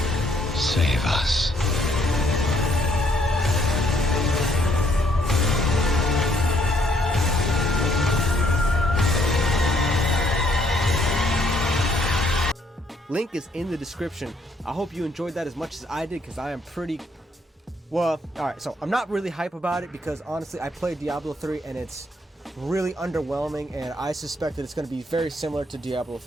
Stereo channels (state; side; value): normal; both; correlation 0.69